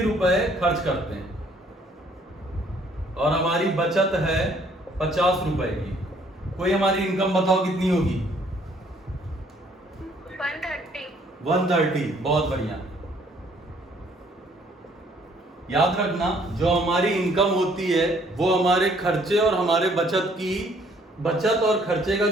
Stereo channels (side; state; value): both; normal; correlation 0.62